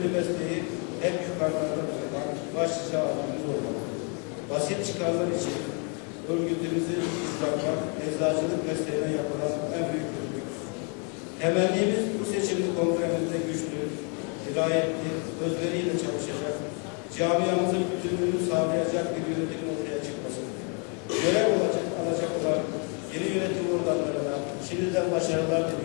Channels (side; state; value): right; quieter; 37.1 dB